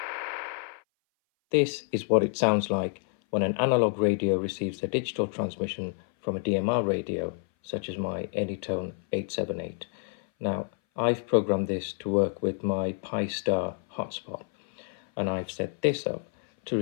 This is what it sounds like when an analog radio receives a digital transmission from a DMR radio, such as my Anytone 878. Now, I've programmed this to work with my Pi-Star hotspot, and I've set this up to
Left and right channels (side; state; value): right; silent; 58 dB below the other